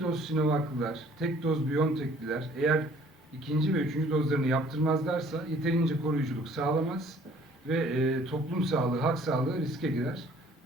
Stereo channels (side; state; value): both; normal; correlation 0.56